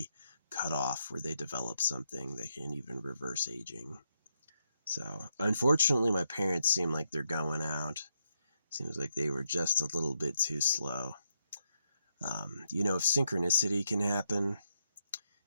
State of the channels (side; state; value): both; inverted; correlation -0.80